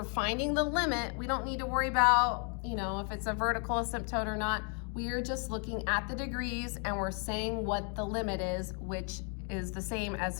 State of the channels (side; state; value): right; quieter; 39.2 dB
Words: finding the limit, we don't need to worry about, you know, if it's a vertical asymptote or not. We are just looking at the degrees and we're saying what the limit is, which is the same as